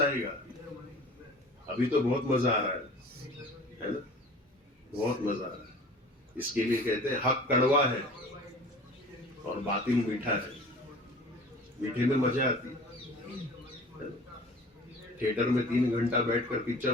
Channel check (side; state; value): both; normal; correlation 0.43